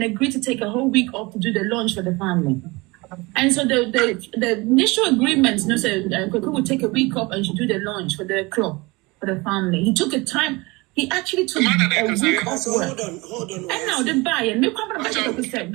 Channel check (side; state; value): left; quieter; 24.2 dB